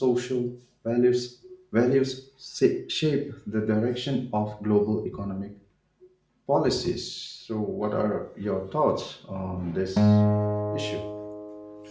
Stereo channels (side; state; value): both; identical; correlation 1.00